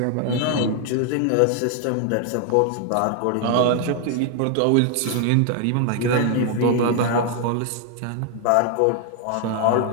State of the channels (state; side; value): different; both; correlation 0.00